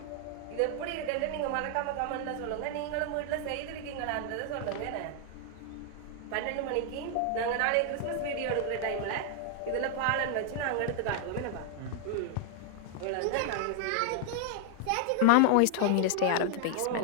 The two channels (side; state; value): both; different; correlation 0.00